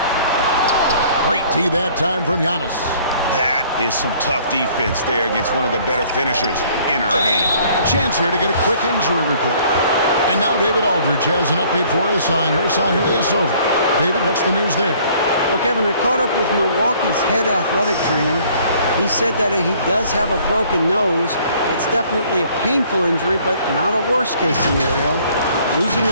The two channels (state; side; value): inverted; both; correlation -0.57